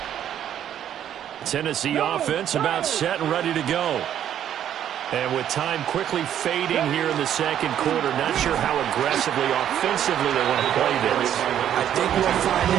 Tennessee offense about set and ready to go. And with time quickly fading here in the second quarter, not sure how aggressively, offensively they want to play this. I think we'll find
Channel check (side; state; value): left; quieter; 10.3 dB